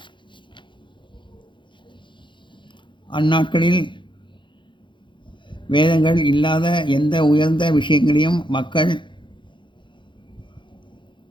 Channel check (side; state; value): right; late; 0.23 ms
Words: அந்நாட்களில் வேதங்கள் இல்லாத எந்த உயர்ந்த விஷயங்களையும் மக்கள்